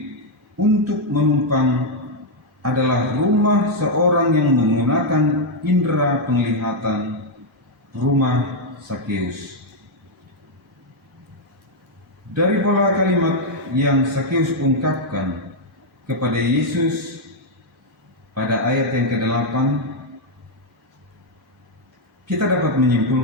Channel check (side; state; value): both; normal; correlation -0.01